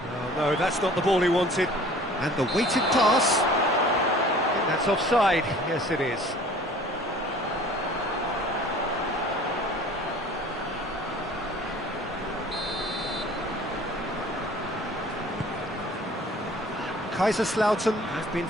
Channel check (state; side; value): normal; both; correlation 0.48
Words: Oh, no, that's not the ball he wanted. And the weighted pass. I think that's offside. Yes, it is. Kaiserslautern have been